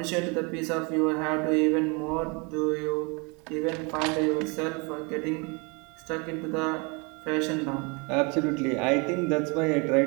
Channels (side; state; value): left; quieter; 30.6 dB